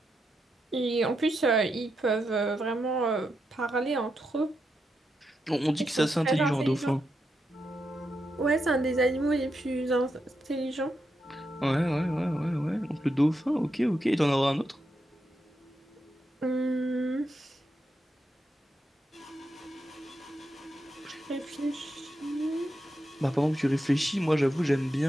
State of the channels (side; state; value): both; normal; correlation 0.85